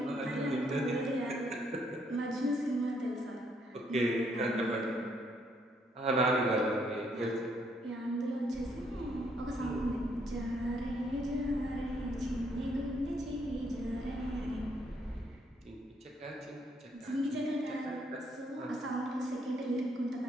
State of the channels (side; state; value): both; normal; correlation 0.71